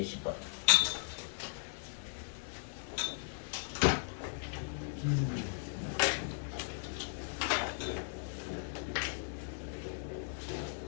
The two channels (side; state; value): right; silent; 53 dB below the other